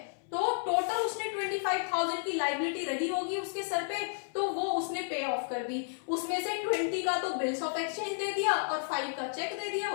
तो टोटल उसने 25,000 की लाइबिलिटी रही होगी उसके सर पे, तो वो उसने पे ऑफ कर दी। उसमें से 20 का तो बिल्स ऑफ एक्सचेंज दे दिया और 5 का चेक दे दिया,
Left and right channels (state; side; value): silent; right; 56 dB below the other